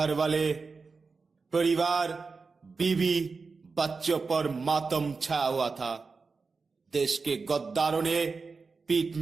वाले, परिवार, बीवी, बच्चों पर मातम छाया हुआ था। देश के गद्दारों ने पीठ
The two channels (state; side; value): quieter; left; 4.5 dB